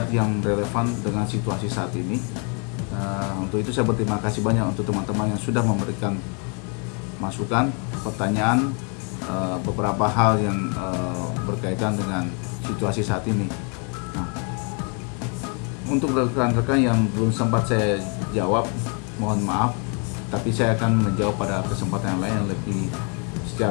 yang relevan dengan situasi saat ini. Untuk itu saya berterima kasih banyak untuk teman-teman yang sudah memberikan masukan, pertanyaan, beberapa hal yang berkaitan dengan situasi saat ini. Nah, untuk rekan-rekan yang belum sempat saya jawab, mohon maaf, tapi saya akan menjawab pada kesempatan yang lain yang lebih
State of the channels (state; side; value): quieter; right; 37.1 dB